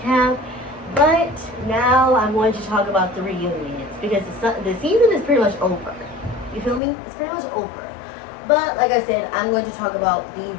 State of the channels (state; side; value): drops out; right; at 6.8 s